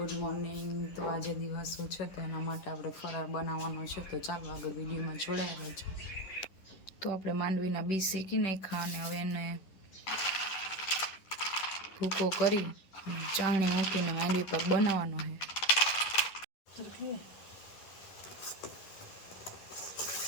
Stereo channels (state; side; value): late; right; 10 ms